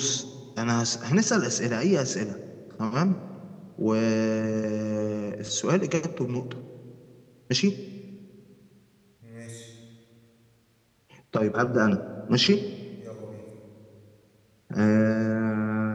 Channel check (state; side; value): identical; both; correlation 1.00